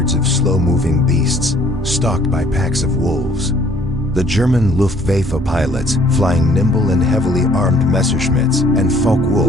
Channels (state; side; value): noise; left; rumble, 18 dB below the sound